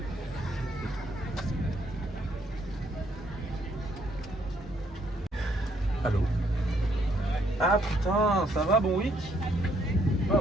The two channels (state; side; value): normal; both; correlation 0.70